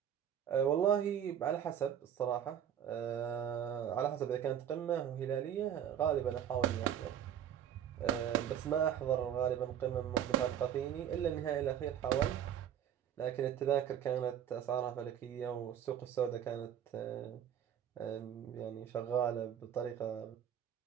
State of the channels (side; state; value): left; quieter; 9.5 dB